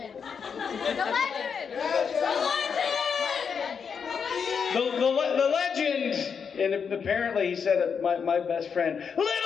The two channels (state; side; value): quieter; right; 6.4 dB